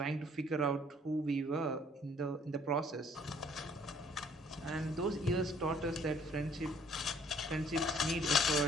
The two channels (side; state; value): both; normal; correlation 0.60